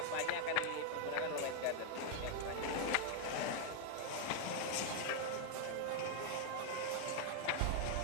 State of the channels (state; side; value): different; both; correlation 0.00